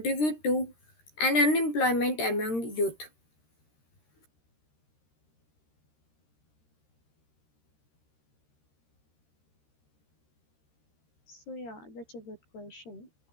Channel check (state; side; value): late; right; 13 ms